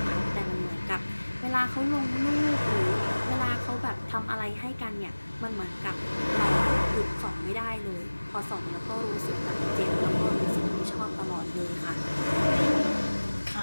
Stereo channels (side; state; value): both; inverted; correlation -1.00